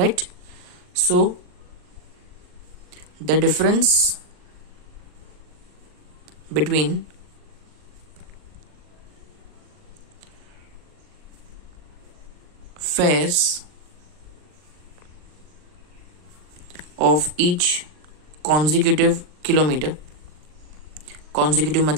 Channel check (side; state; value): left; late; 39 ms